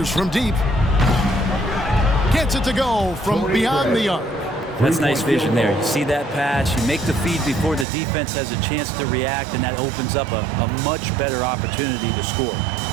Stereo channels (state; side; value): drops out; left; at 7.9 s